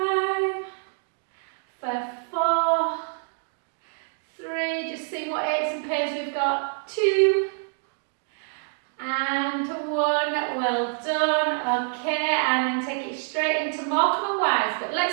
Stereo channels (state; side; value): silent; left; digital silence